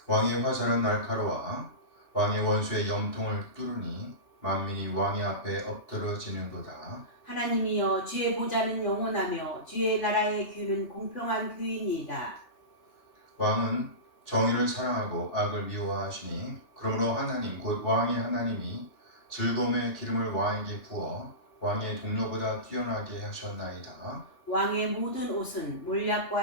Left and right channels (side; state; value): right; late; 3.1 ms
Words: 왕의 화살은 날카로워 왕의 원수의 염통을 뚫으니 만민이 왕의 앞에 엎드러지는도다. 하나님이여, 주의 보좌는 영원하며 주의 나라의 규는 공평한 규이니이다. 왕은 정의를 사랑하고 악을 미워하시니 그러므로 하나님 곧 왕의 하나님이 즐거움의 기름을 왕에게 부어 왕의 동료보다 뛰어나게 하셨나이다. 왕의 모든 옷은